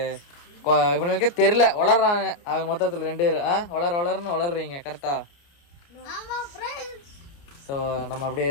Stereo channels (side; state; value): right; late; 29 ms